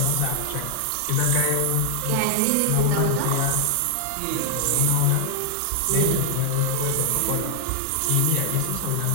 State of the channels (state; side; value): different; both; correlation 0.00